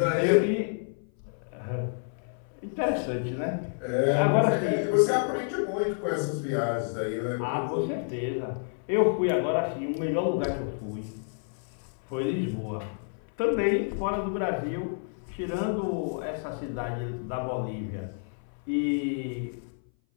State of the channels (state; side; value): silent; right; 57 dB below the other